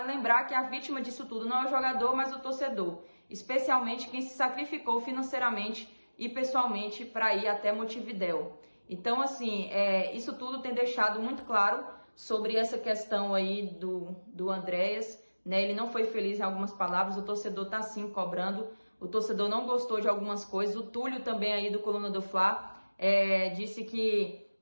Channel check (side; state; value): both; inverted; correlation -1.00